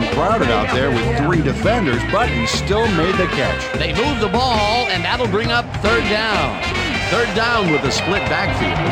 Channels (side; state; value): both; identical; correlation 1.00